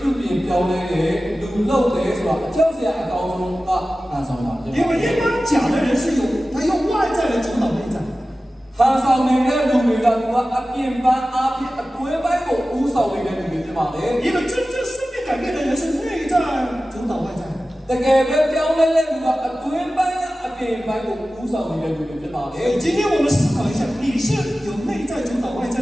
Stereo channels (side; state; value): both; normal; correlation 0.95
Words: ြုပြင်ပြောင်းလဲတယ်လူလောက်တယ်ဆိုတာအကြောက်စရာအကောင်းဆုံးကဟန်ဆောင်တာဖြစ် 因 ပါ 为一般假的人是他用外在来主导内在， ဟန်ဆောင်နေတဲ့လူတွေကသူကအပြင်ပန်းအပြင်အတွင်းပိုင်းကိုဥဆောင်နေတဲ့လူတွေဖြစ်ပါလေ 因为真正生命改变的人是内在主导外在。 တကယ်ပဲပြောင်းလဲတဲ့လူကအတွင်းပိုင်းကအပြင်ပိုင်းကိုဥဆောင်နေတဲ့လူတွေဖြစ်ပါလေ 今天我们思考一下，你是有内在主导外在